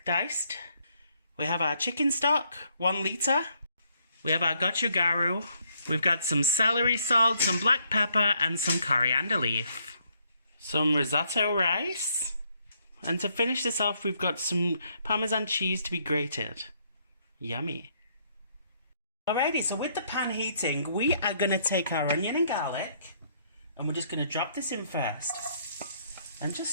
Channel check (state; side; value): inverted; both; correlation -0.71